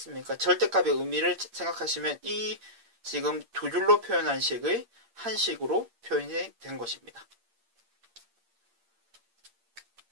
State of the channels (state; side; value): late; left; 8.7 ms